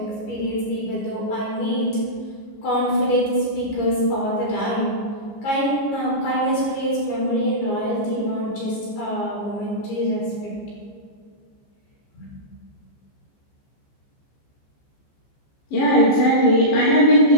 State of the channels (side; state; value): right; late; 15 ms